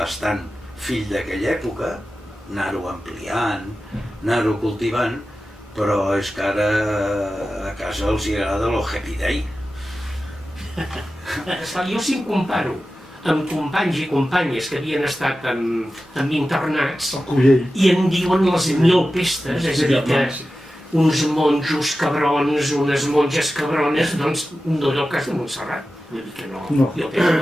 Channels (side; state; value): both; normal; correlation 0.93